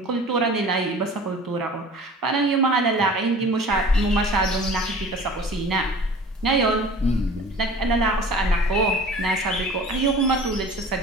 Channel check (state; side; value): normal; both; correlation 0.43